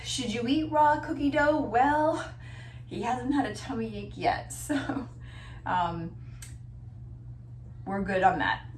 Should you eat raw cookie dough? Well, he hasn't had a tummy ache yet, so we're good on that.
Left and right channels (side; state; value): both; identical; correlation 1.00